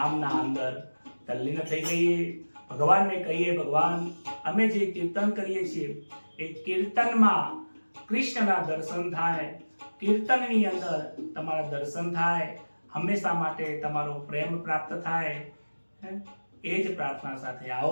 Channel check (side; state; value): both; inverted; correlation -1.00